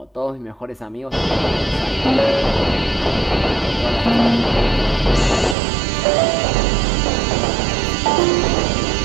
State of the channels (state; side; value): drops out; left; at 5.6 s